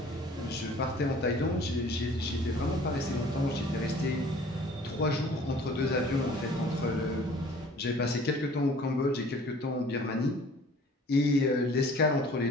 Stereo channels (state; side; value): normal; both; correlation 0.51